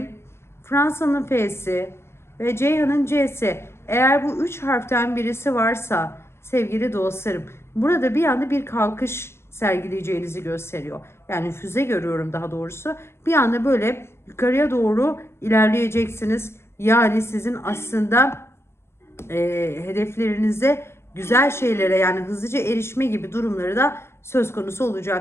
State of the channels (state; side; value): late; right; 0.12 ms